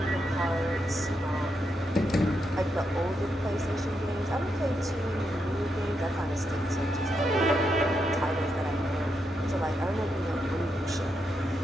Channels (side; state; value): both; normal; correlation 0.82